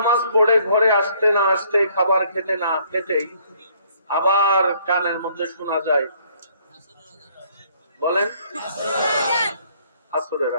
পড়ে ঘরে আসতে না আসতে, খাবার খেতে না খেতেই আবার কানের মধ্যে শোনা যায়, বলেন আসরের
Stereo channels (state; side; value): inverted; both; correlation -0.63